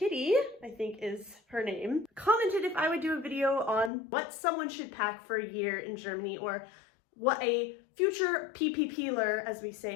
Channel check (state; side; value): drops out; right; at 3.9 s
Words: I think is her name, commented if I would do a video on what someone should pack for a year in Germany, or what a future PPPler, as we